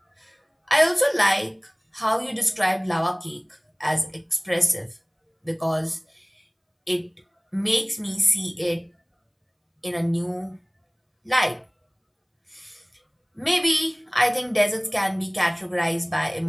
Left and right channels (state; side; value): identical; both; correlation 1.00